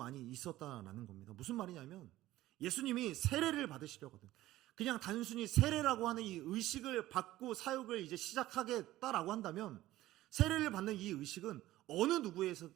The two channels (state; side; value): quieter; left; 15.6 dB